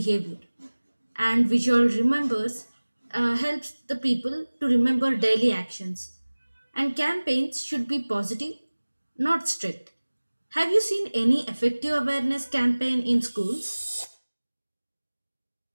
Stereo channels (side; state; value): both; inverted; correlation -1.00